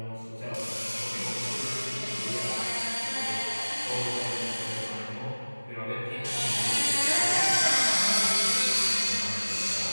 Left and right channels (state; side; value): inverted; both; correlation -1.00